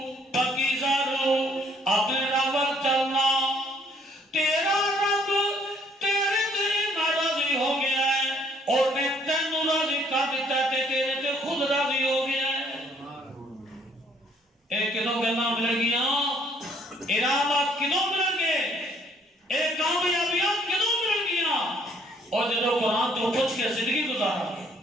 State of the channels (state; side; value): normal; both; correlation 0.64